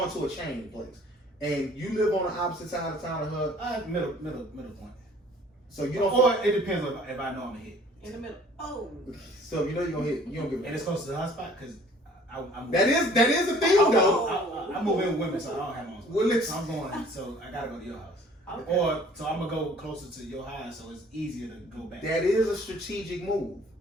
to a chain place, and you live on the opposite side of town of her. Middle point. So you don't. Or it depends if I know I'm gonna hit. In the middle. Oh. So you know you're gonna hit. You don't give. And it's close to the hot spot because that is the thing though. I move in with women, so I don't have my own spot. Well, so I'm going. So I gotta go to your house. Okay. Or so I'm gonna go closer to your house, so it's easier to go back. That is a strategic move.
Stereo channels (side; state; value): both; normal; correlation 0.54